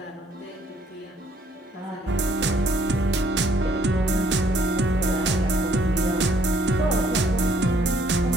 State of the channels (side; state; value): both; normal; correlation 0.65